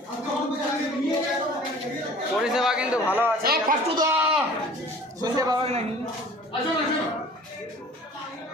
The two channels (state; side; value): normal; both; correlation 0.47